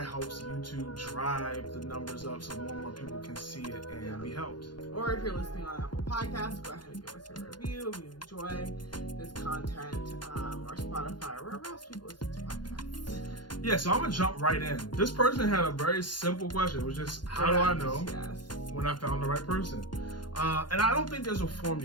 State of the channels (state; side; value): late; right; 0.71 ms